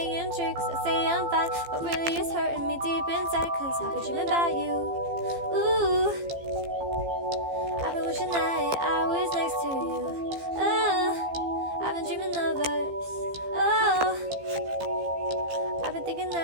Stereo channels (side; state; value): left; late; 15 ms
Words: tricks. I say I'm fine, but really it's hurting me deep inside. Cause I've been dreaming about you. Ooh, I've been wishing that I was next to you. Oh, I've been dreaming of us. Oh, I've been thinking